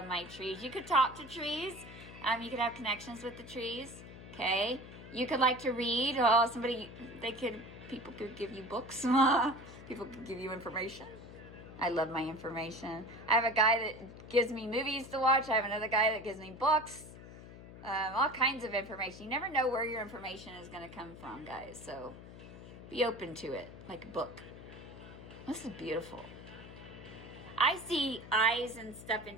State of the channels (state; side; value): noise; left; hum, 15 dB below the sound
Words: my trees. You could talk to trees. You could have connections with the trees. Okay. You could like to read. Oh, people could give you books. People could give you information. I love my information. I have a guy that gives me movies to watch. I have another guy that gives me books. All kinds of information. You never know where your information is going to come from, guys. So be open to it, like a book. This is beautiful. I see eyes and stuff in